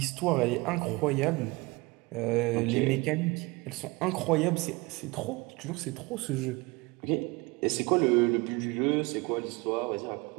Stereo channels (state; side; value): quieter; left; 24.2 dB